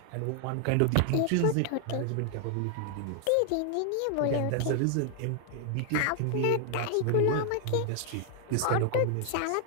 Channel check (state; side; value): different; both; correlation 0.00